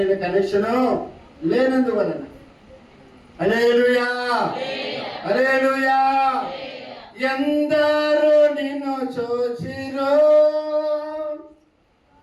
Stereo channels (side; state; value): both; identical; correlation 1.00